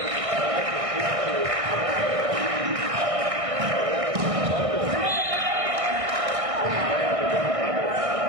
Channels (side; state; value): left; late; 1.6 ms